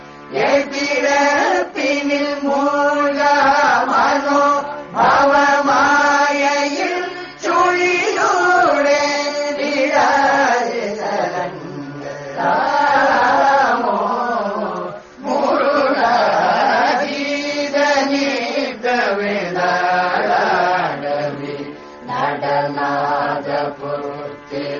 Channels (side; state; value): both; identical; correlation 1.00